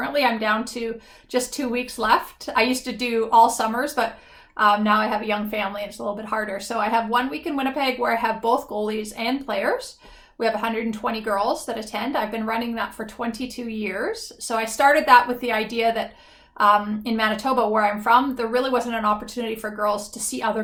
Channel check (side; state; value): both; identical; correlation 1.00